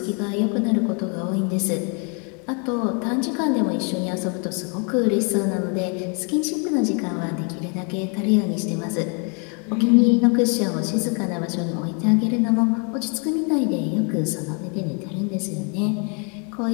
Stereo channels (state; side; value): quieter; right; 37.2 dB